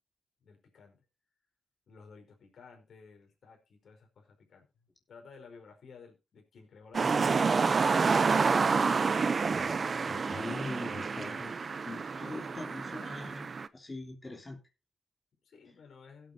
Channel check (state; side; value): quieter; left; 4.3 dB